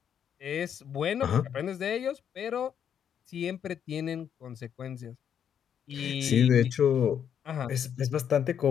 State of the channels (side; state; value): right; quieter; 8.6 dB